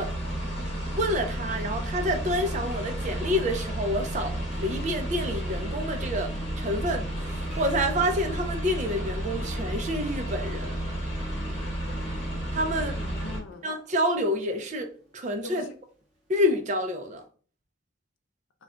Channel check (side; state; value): both; normal; correlation 0.30